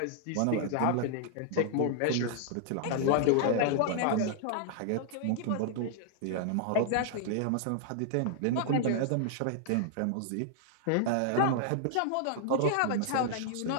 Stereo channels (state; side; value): different; both; correlation -0.01